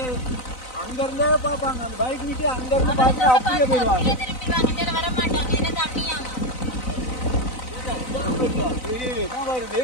அங்க இருந்தே பார்ப்பாங்க. அந்த பைக் நிட்டு அங்க இருந்து பார்த்து அப்படியே போயிடுவாங்க.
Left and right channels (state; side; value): late; right; 4.0 ms